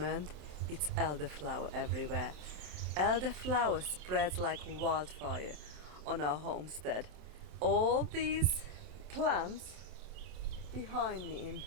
it's elderflower everywhere. Elderflower spreads like wildfire on our homestead. All these plants behind me in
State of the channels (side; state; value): left; late; 27 ms